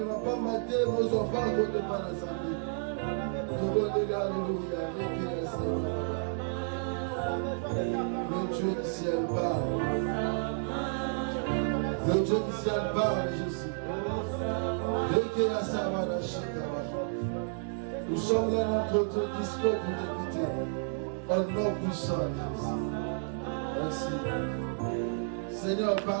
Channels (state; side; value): silent; left; digital silence